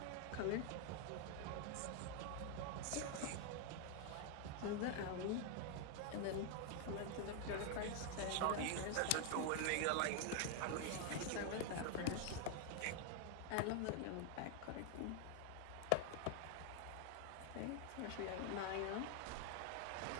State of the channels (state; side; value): different; both; correlation 0.00